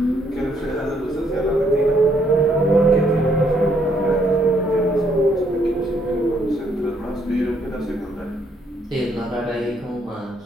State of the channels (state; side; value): normal; both; correlation 0.70